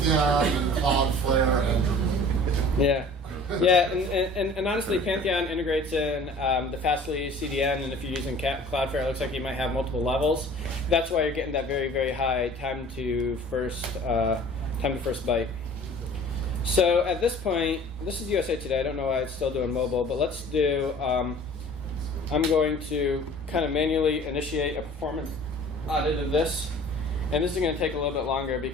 and Cloudflare and Drupal. Yeah. Yeah, and honestly, Pantheon integrates in the Fastly CDN, and if you're using Cloudflare, it looks like you might have multiple levels. That's why you're getting that very, very high time to first byte. So at this point, this is USA Today. I don't know why it's still doing mobile, but let's do. I'm going to kind of manually initiate a performance audit of this, and this is going to take a little bit longer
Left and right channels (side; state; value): both; normal; correlation 0.46